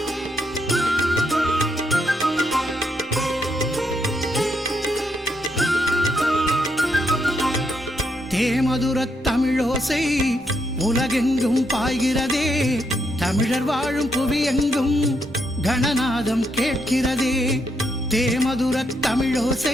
தேமதுரத் தமிழோசை உலகெங்கும் பாய்கிறதே, தமிழர் வாழும் புவியெங்கும் கணநாதம் கேட்கிறதே. தேமதுரத்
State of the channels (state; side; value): normal; both; correlation 0.78